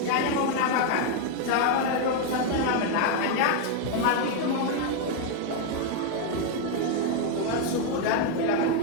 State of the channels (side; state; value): both; different; correlation 0.00